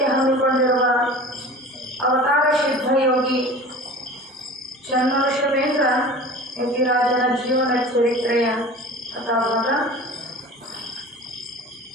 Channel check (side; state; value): both; normal; correlation 0.39